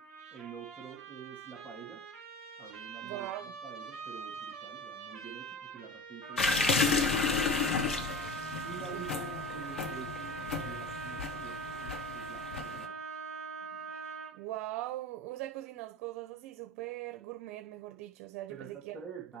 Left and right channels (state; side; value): normal; both; correlation 0.33